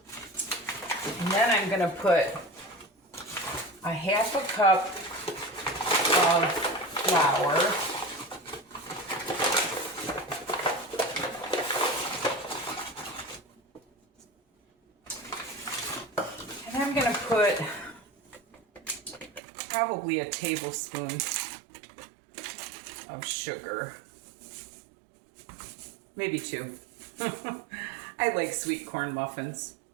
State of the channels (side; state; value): left; drops out; at 19.4 s